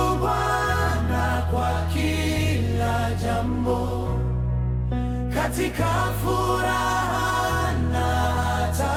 Bwana kwa kila jambo, katika furaha na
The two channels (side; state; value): both; identical; correlation 1.00